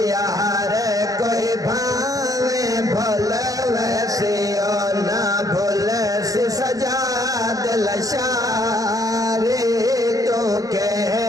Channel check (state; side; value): late; left; 0.17 ms